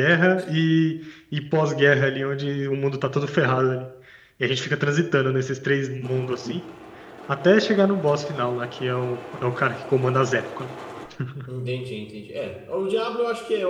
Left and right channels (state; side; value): identical; both; correlation 1.00